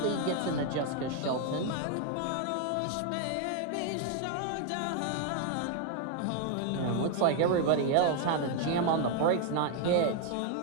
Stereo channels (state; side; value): different; both; correlation 0.00